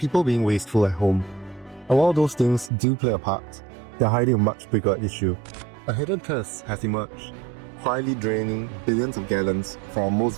being wasteful at home. And while those things do play a part, they're hiding a much bigger issue. A hidden curse has emerged, quietly draining billions of gallons from our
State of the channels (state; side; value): drops out; left; at 2.7 s